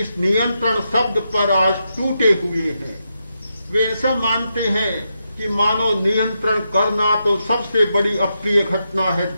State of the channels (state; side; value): inverted; both; correlation -0.85